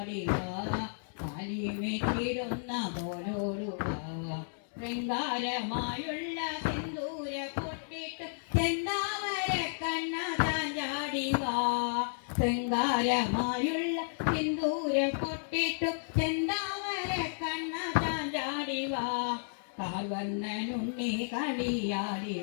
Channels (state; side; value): silent; right; digital silence